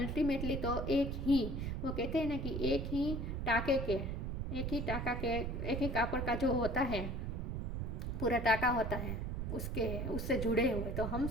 तो एक ही, वो कहते हैं ना कि एक ही कापड़ का जो होता है, पूरा टाका होता है, उससे जुड़े हुए। तो हम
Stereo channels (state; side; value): noise; right; rumble, 2 dB below the sound